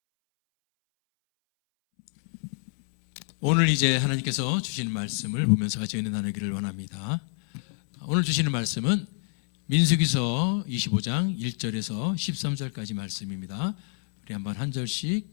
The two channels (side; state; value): right; silent; 60 dB below the other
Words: 오늘 이제 하나님께서 주시는 말씀을 보면서 같이 은혜 나누기를 원합니다. 오늘 주시는 말씀은 민수기서 25장 1절에서 13절까지 말씀입니다. 우리 한번 한 절씩